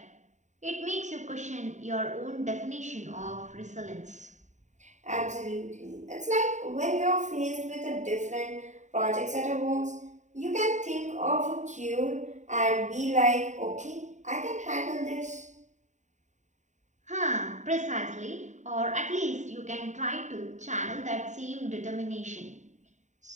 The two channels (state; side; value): late; left; 0.34 ms